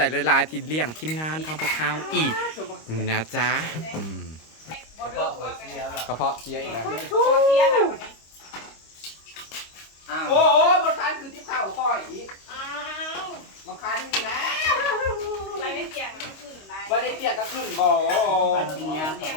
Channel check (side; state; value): right; late; 25 ms